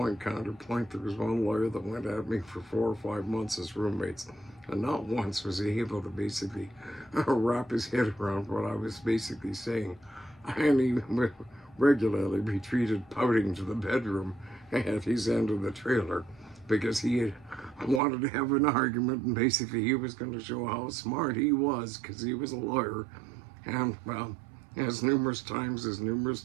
counterpoint, there was one lawyer that went at me for 4 or 5 months as roommates, and not once was he able to basically wrap his head around what I was basically saying. And he regularly retreated pouting to the bedroom at his end of the trailer because he had wanted to have an argument, and basically he was going to show how smart he was because he was a lawyer. And, well, as numerous times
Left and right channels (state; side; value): drops out; left; at 18.0 s